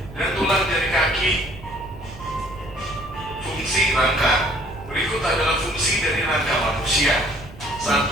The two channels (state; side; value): noise; right; rumble, 17 dB below the sound